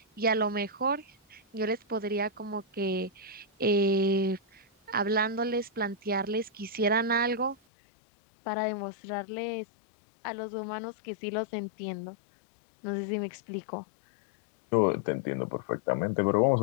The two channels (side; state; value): right; drops out; at 7.6 s